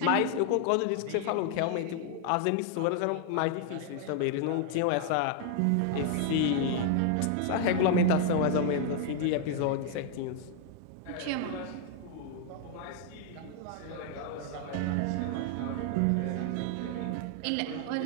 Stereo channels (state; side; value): different; both; correlation 0.00